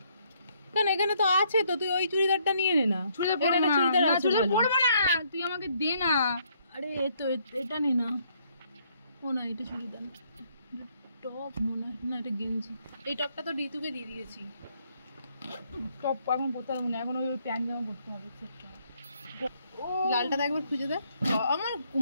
কেন এখানে তো আছে তো, তুই ওই চুড়িদারটা নিয়ে নে না। চুড়িদার পরবো না, তুই আমাকে দে না। আরে তো এটা নে না। ও না, এটা চুড়িদার, টপ মনে হয় না, এটা গেঞ্জি। এই টপটা তো ঋতুকে দিয়ে দিয়েছি। টপ এখন পরতে হবে না, এখন ওই প্যান্ট জামা পরতে হবে। লালটা একবার খুঁজে দে, আমার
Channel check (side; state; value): both; inverted; correlation -0.69